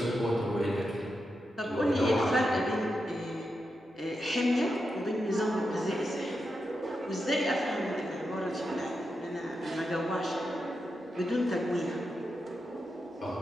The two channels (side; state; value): both; normal; correlation 0.87